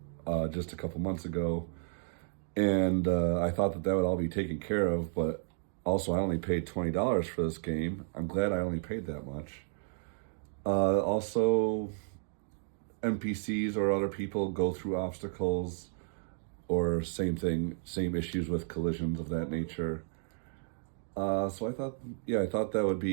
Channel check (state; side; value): silent; left; digital silence